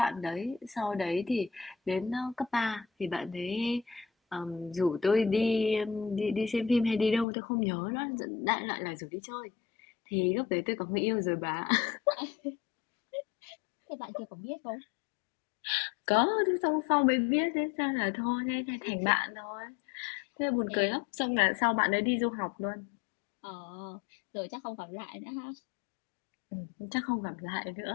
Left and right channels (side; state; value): right; drops out; at 7.2 s